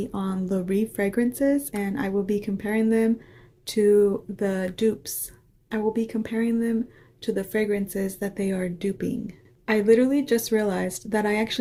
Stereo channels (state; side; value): identical; both; correlation 1.00